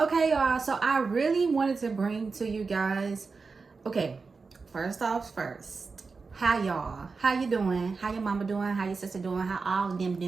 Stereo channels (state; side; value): quieter; left; 4.5 dB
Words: y'all, so I really wanted to bring to you guys, okay, first, how y'all, how you doing, how your mama doing, how your sister doing, how all of them